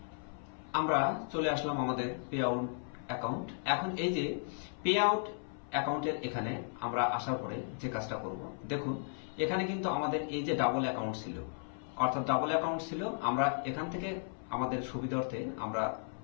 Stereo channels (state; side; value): silent; right; 54 dB below the other